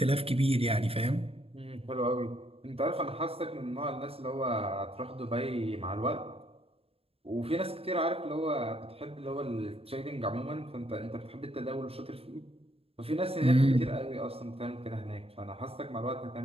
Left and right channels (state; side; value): late; left; 0.28 ms